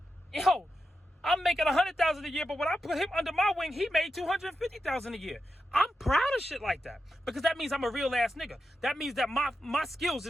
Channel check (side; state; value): both; normal; correlation 0.89